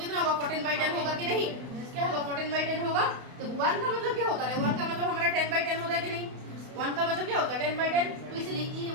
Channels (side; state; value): left; late; 32 ms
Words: होगा 14/10 होगा कि नहीं। क्या होगा 14/10 होगा। तो 1 का मतलब क्या होता है, 1 का मतलब हमारा 10/10 होता है कि नहीं। 1 का मतलब क्या होता है 10/10। तो इसलिए ये